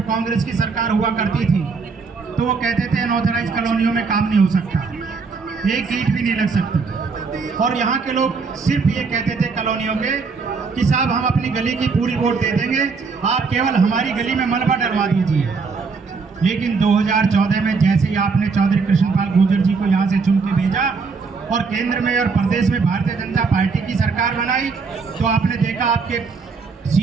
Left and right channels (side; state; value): left; quieter; 4.8 dB